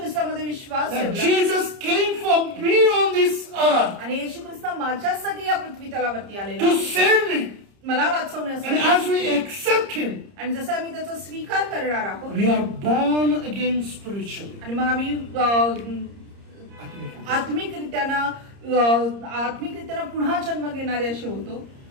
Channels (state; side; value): late; left; 30 ms